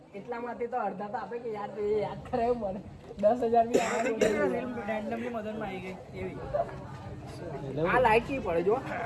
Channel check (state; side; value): identical; both; correlation 1.00